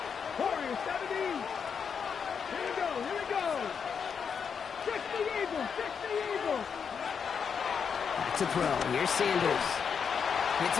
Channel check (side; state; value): right; quieter; 6.6 dB